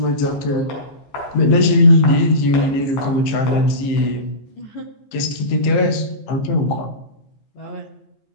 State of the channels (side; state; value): right; late; 15 ms